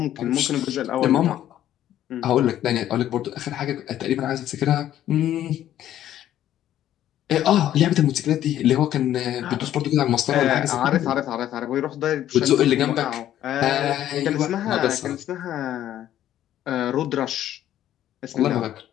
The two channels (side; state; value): right; quieter; 12.0 dB